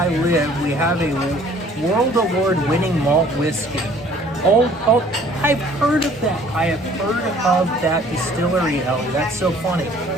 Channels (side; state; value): both; normal; correlation 0.55